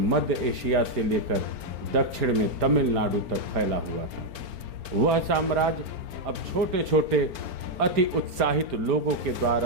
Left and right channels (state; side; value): late; left; 4.4 ms